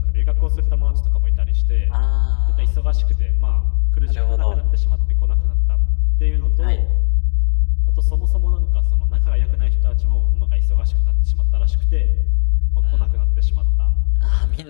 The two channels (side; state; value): right; silent; digital silence